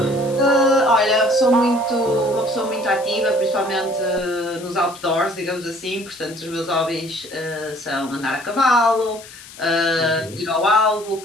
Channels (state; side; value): noise; left; hiss, 18 dB below the sound